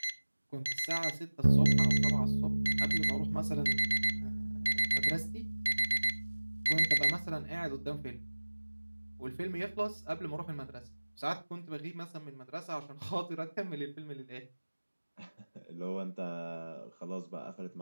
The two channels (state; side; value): inverted; both; correlation -1.00